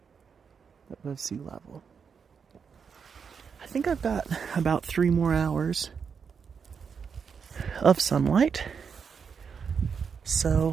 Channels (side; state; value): left; quieter; 6.3 dB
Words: above sea level. I think I've got about 3 more hours of sunlight.